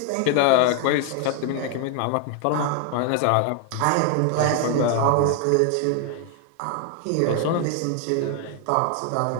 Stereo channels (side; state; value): both; different; correlation 0.01